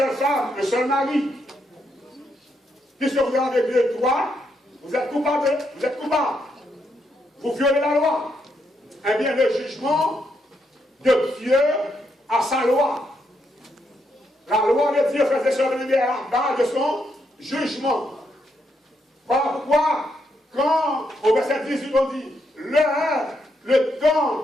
femme, un seul mari. Puisque vous avez 2 droits, vous êtes coupable. Vous êtes coupable. Vous violez la loi. Eh bien, le jugement de Dieu a sa loi. La loi de Dieu faisait survenir à la base de son jugement. Voilà pourquoi, quand au verset 18 on dit le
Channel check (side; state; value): both; normal; correlation 0.79